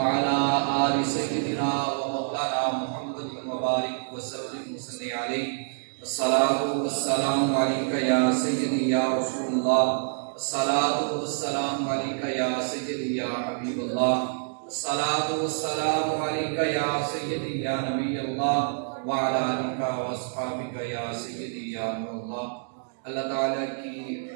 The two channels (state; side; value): silent; left; digital silence